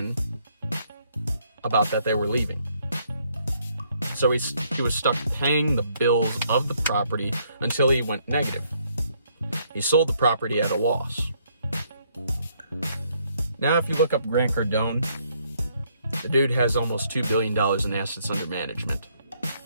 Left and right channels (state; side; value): inverted; both; correlation -0.69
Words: about that they were leaving. So he was stuck paying the bills of the property until he went negative. He sold the property at a loss. Now, if you look up Grant Cardone, the dude has almost $2 billion in assets under management